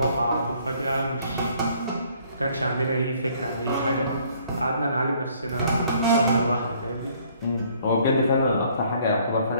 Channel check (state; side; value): inverted; both; correlation -0.61